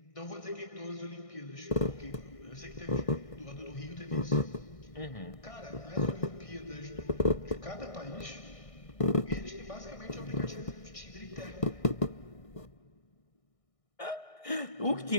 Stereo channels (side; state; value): right; late; 1.6 ms